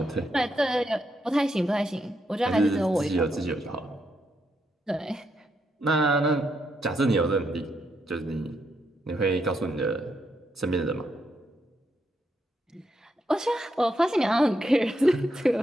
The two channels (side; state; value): both; normal; correlation 0.80